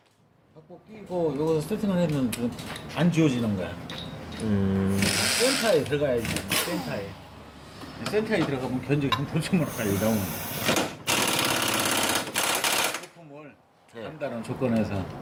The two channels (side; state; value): both; identical; correlation 1.00